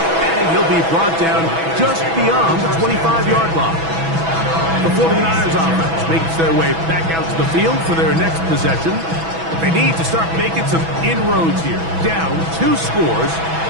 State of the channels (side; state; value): left; late; 6.1 ms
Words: he'll be brought down just beyond the 25-yard line. The 49ers offense makes their way back out to the field for their next possession. They need to start making some inroads here. Down 2 scores